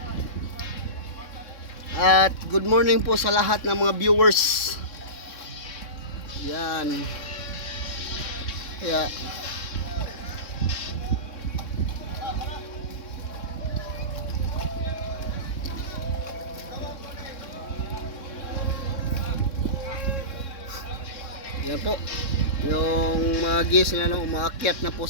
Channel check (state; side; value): late; right; 3.6 ms